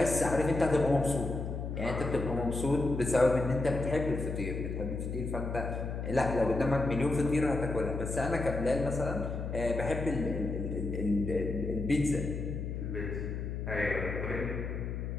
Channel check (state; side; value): noise; left; hum, 4 dB below the sound